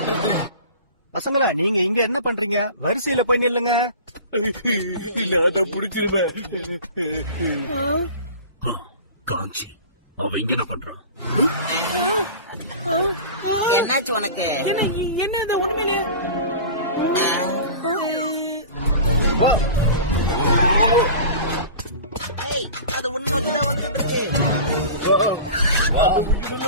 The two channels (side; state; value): both; inverted; correlation -0.36